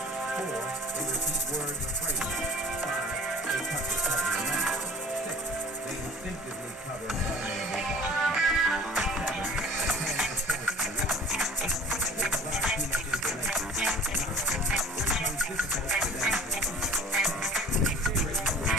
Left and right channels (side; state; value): both; normal; correlation 0.46